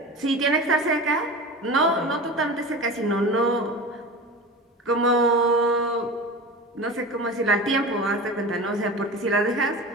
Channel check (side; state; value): both; normal; correlation 0.31